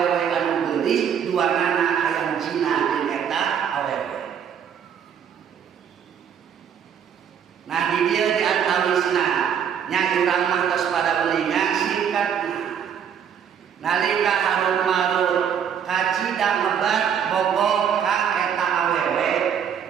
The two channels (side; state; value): left; quieter; 8.2 dB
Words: anu geulis duanana hayang zina jeung eta awewe. Nah di dieu di antawisna nya urang mah tos pada melinga singkatna. Nalika Harut Marut kacida ngebat bogoh ka eta awewe